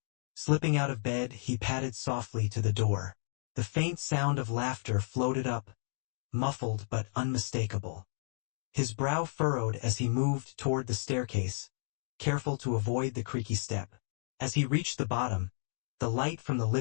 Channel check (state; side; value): silent; right; digital silence